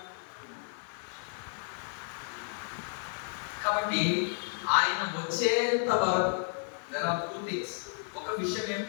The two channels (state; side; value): silent; right; 56 dB below the other